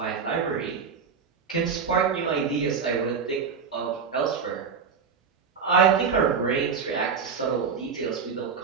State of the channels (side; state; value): left; quieter; 6.1 dB